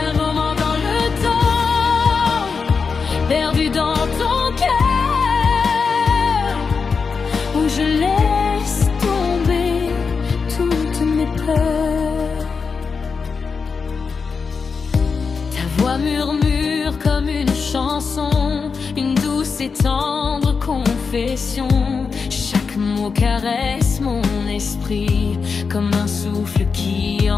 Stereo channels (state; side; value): quieter; right; 5.2 dB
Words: Un moment dans le temps, perdu dans ton cœur, où je laisse tomber toutes mes peurs. Ta voix murmure comme une chanson, une douce et tendre confession. Chaque mot caresse mon esprit comme un souffle qui